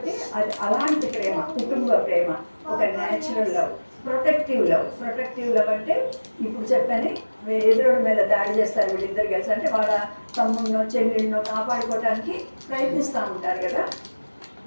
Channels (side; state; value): both; inverted; correlation -1.00